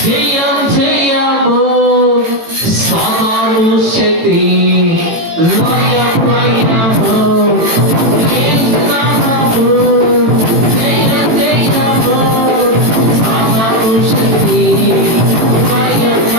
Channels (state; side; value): late; left; 18 ms